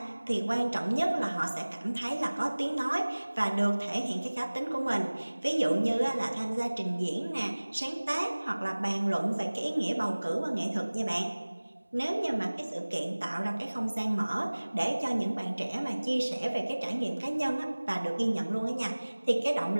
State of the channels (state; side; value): inverted; both; correlation -1.00